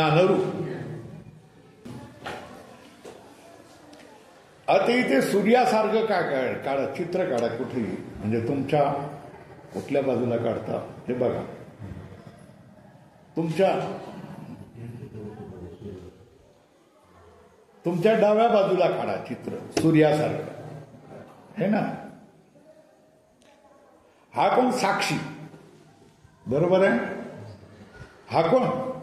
आता इथे सूर्यासारखं काय काढा, चित्र काढा कुठेही, म्हणजे तुमच्या कुठल्या बाजूला काढता हे बघा. तुमच्या डाव्या बाजूला काढा चित्र सूर्यासारखं, है ना? हा कोण? साक्षी. बरोबर आहे? हा कोण?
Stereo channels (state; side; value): identical; both; correlation 1.00